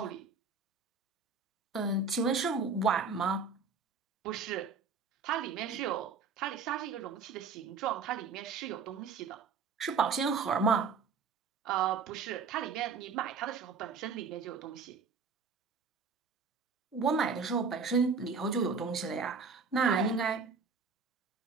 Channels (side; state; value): left; quieter; 5.1 dB